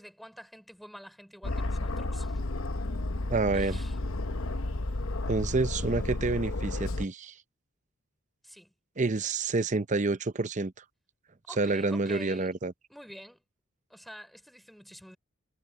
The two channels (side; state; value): both; normal; correlation 0.51